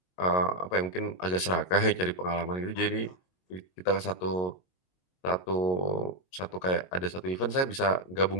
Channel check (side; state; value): right; late; 22 ms